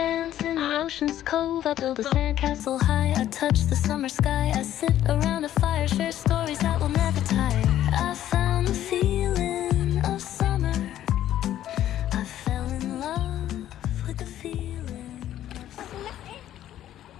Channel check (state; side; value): quieter; right; 12.1 dB